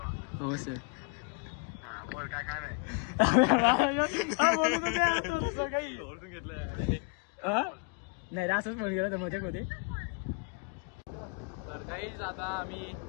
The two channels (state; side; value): quieter; right; 36.2 dB